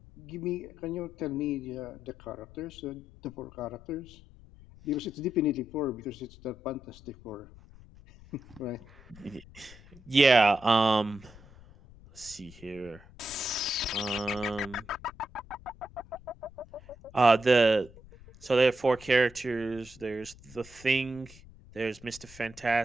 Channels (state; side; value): noise; left; rumble, 21 dB below the sound